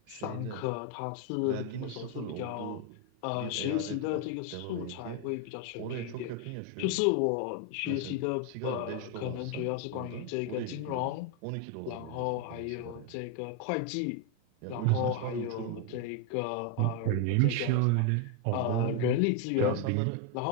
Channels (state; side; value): different; both; correlation 0.01